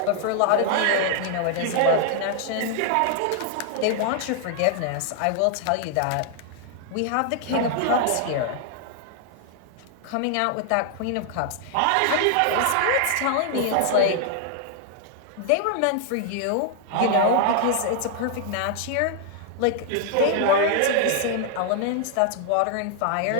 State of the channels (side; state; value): both; different; correlation 0.00